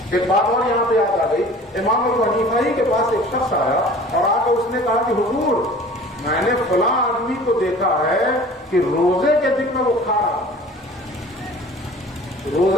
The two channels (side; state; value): both; normal; correlation 0.45